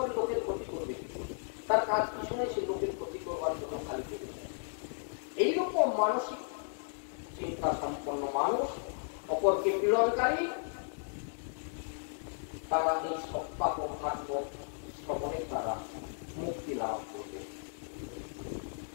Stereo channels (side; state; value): right; silent; digital silence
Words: লোকের ক্ষতি করবে, তার কাজ কিছু নেই, সে লোকের ক্ষতি করবার জন্য খালি পেতে চায়। এইরকম মানসিক চিন্তা সম্পন্ন মানুষ, অপরকে পীড়নকারী, তারা এই সপ্তাহ ভাগবত শ্রবণে তারা মুক্তি লাভ করবে।